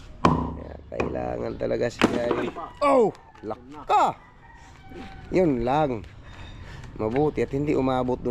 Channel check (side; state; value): both; identical; correlation 1.00